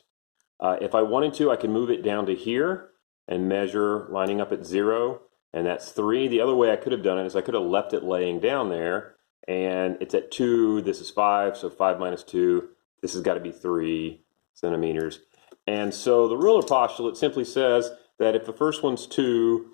If I wanted to, I can move it down to here and measure lining up at 0, and that's 3. The other way I could have done it is I could have left it laying down there, and it's at 2, this is 5, so 5 minus 2, this has got to be 3 centimeters. And so the ruler postulate simply says that if the first one's 2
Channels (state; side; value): silent; right; digital silence